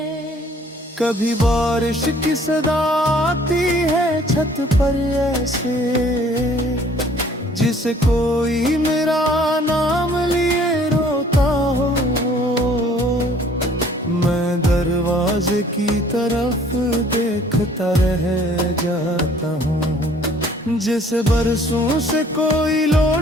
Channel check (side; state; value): both; normal; correlation 0.56